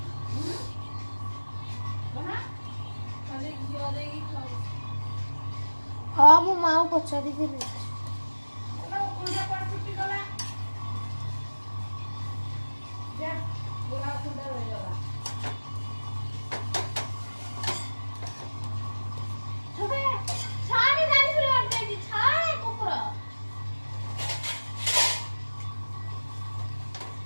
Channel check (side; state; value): both; inverted; correlation -1.00